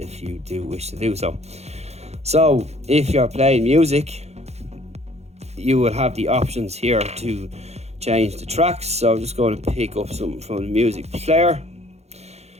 you do wish to do so. So if you're playing music, you will have the options here to change the tracks. So I'm just going to pick up something from the music player,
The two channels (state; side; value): late; left; 0.31 ms